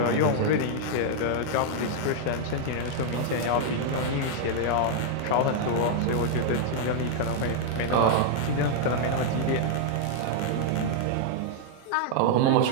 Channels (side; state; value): both; different; correlation -0.01